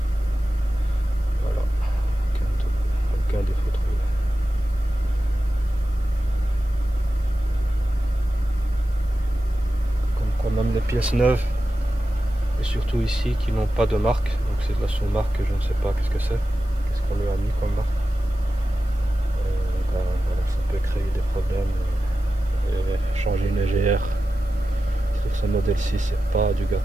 Voilà, aucun défaut trouvé. Comme même les pièces neuves et surtout ici qui n'ont pas de marque, donc c'est de la sous-marque, je ne sais pas qu'est-ce que c'est, qu'est-ce qu'on lui a mis comme marque. Ben, voilà, ça peut créer des problèmes. Et changer une EGR sur ce modèle-ci, c'est pas du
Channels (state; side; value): noise; right; hiss, 30 dB below the sound